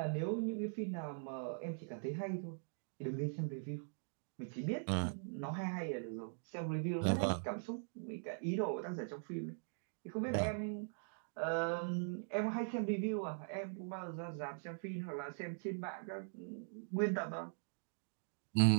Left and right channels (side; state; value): left; silent; digital silence